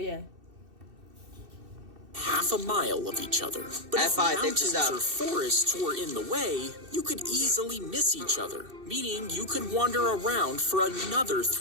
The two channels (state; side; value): late; left; 2.7 ms